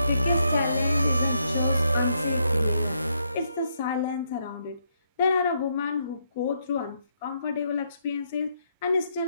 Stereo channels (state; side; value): inverted; both; correlation -0.77